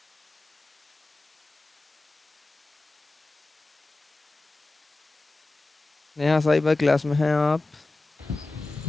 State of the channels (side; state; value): right; quieter; 3.1 dB